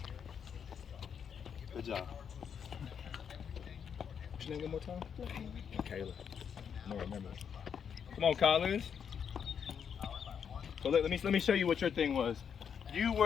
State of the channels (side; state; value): right; quieter; 7.4 dB